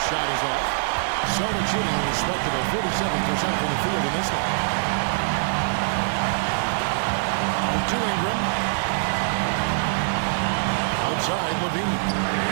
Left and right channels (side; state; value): left; silent; digital silence